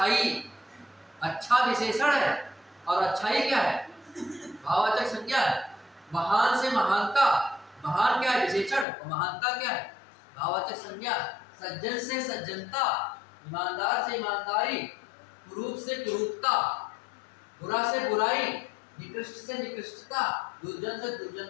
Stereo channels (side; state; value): right; drops out; at 8.8 s